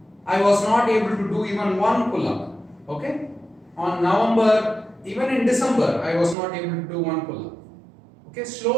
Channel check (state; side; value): drops out; left; at 6.4 s